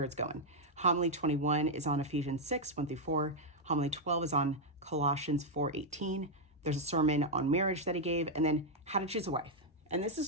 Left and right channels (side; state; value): both; normal; correlation -0.01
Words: it's going. Homily 21 is on Ephesians 6, 1 through 4. Homily 12 is on Colossians 4, 18. There's a sermon on marriage that he gave, and then how to choose a wife. And this